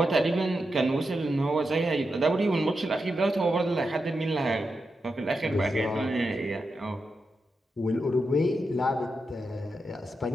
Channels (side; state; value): both; normal; correlation 0.87